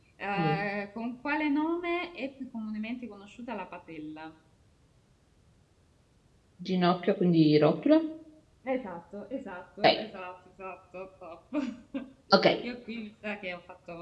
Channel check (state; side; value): identical; both; correlation 1.00